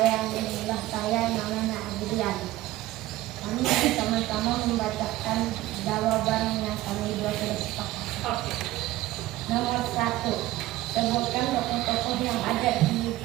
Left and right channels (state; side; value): quieter; left; 16.5 dB